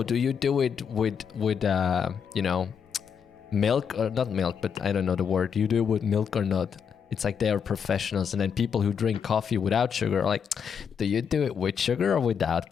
do you do it with milk or not milk? But I don't know the word. Do you do it with milk or not? It's like they are professionals, and then people who drink coffee without sugar are like, "Do you do it with sugar or without?"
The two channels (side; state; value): right; quieter; 7.1 dB